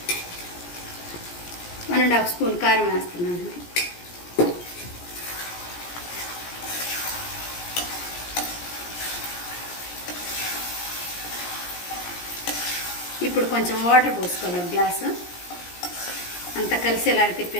1.5 స్పూన్ కారం వేస్తున్నాను. ఇప్పుడు కొంచెం వాటర్ పోసుకోవాలి, ఒక గ్లాసు అంతా కలిసేలాగా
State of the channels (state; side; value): late; right; 17 ms